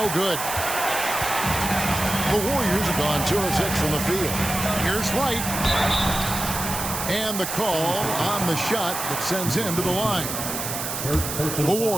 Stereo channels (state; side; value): noise; right; hiss, 4 dB below the sound